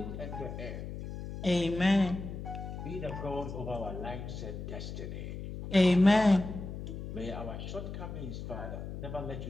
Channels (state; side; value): noise; left; hum, 8 dB below the sound